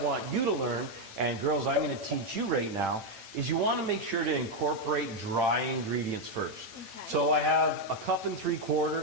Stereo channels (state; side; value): late; left; 8.9 ms